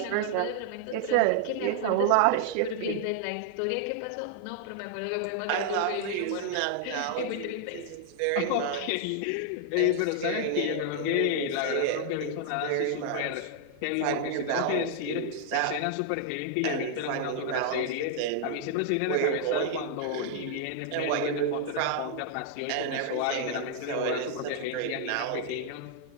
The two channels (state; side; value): different; both; correlation 0.00